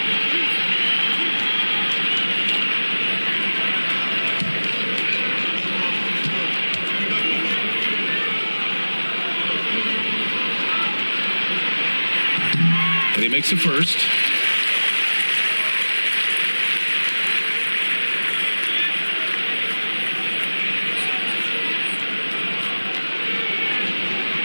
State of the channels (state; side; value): inverted; both; correlation -1.00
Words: And he makes it first.